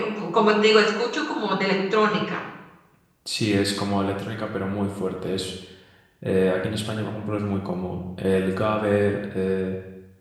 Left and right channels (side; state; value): both; identical; correlation 1.00